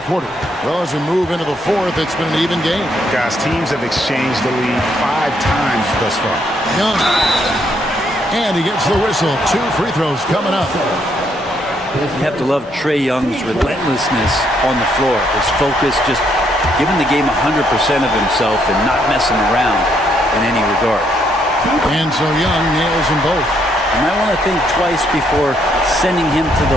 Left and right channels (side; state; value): both; normal; correlation 0.73